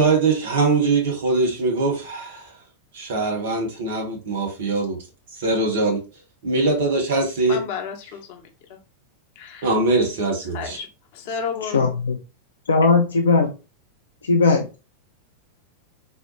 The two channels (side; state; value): both; inverted; correlation -0.36